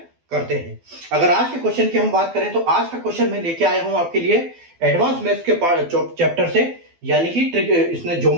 करते हैं। अगर आज के क्वेश्चन की हम बात करें तो आज का क्वेश्चन मैं लेके आया हूं आपके लिए एडवांस मैथ्स के चैप्टर से, यानी कि ट्रिक इसमें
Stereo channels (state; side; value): late; left; 12 ms